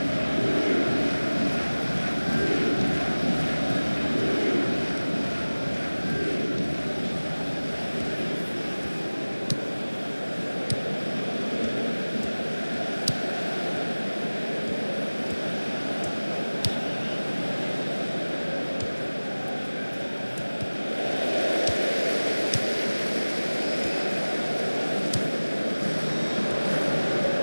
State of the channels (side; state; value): both; inverted; correlation -1.00